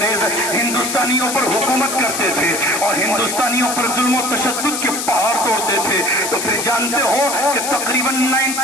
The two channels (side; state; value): left; noise; hiss, 3 dB below the sound